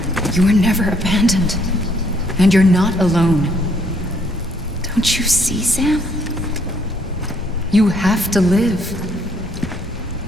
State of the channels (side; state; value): both; normal; correlation 0.67